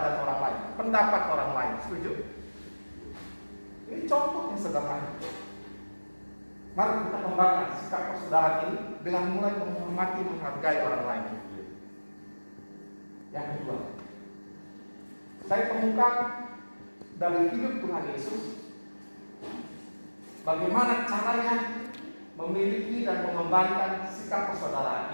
orang lain, pendapat orang lain. Setuju? Ini contoh yang sederhana. Mari kita kembangkan sikap persaudaraan ini dengan mulai menghormati, menghargai orang lain. Yang kedua, saya temukan dari hidup Tuhan Yesus bagaimana caranya memiliki dan mengembangkan sikap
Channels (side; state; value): both; inverted; correlation -1.00